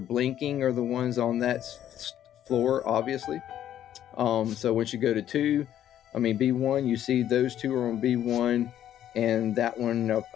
are the ones on that floor, obviously. So once you go to B1, you see those 2 are on B1, and that one,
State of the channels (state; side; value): quieter; right; 11.1 dB